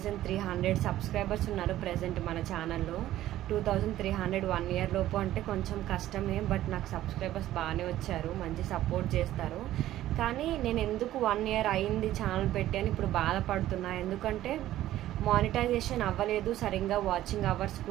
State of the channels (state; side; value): quieter; left; 13.9 dB